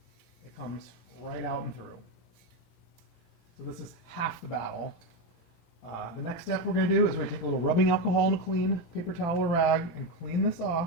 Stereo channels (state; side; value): late; right; 18 ms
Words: it comes right out and through. So this is half the battle. The next step we're going to do is we're going to take a little rubbing alcohol and a clean paper towel or rag and clean this